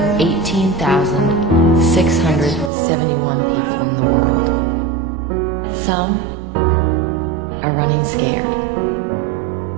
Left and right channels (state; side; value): drops out; left; at 2.7 s